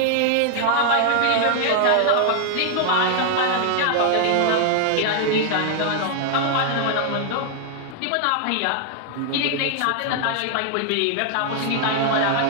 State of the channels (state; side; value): different; both; correlation 0.00